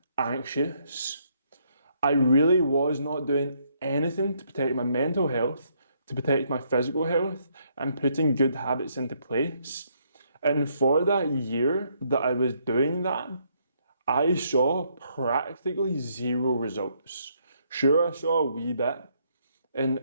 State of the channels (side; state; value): both; inverted; correlation -0.72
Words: anxious. I really was not doing anything to protect my mental health, to protect my physical health, and putting good habits into place. And for that year that I was doing that, I saw practically zero results. Sure, I saw a wee bit. And